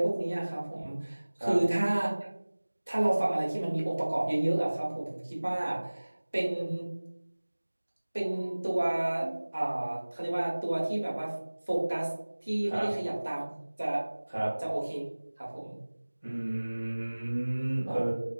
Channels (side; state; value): both; inverted; correlation -1.00